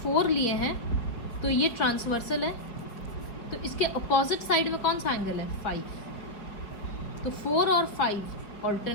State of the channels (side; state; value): right; late; 5.0 ms